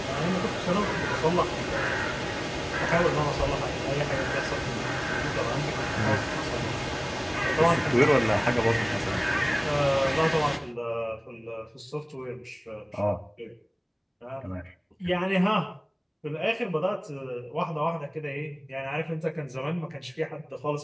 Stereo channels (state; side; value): identical; both; correlation 1.00